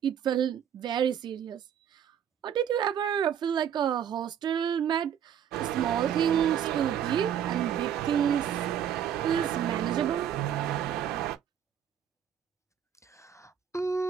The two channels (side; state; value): left; quieter; 9.2 dB